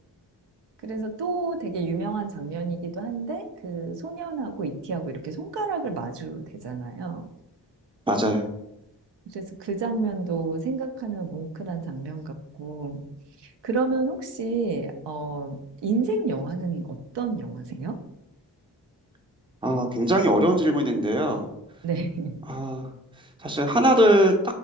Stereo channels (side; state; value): both; normal; correlation 0.41